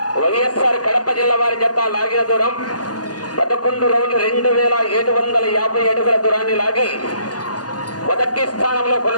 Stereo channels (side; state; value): right; late; 0.68 ms